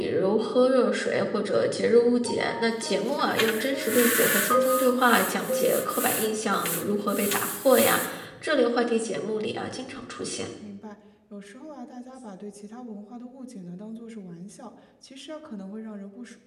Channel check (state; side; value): identical; both; correlation 1.00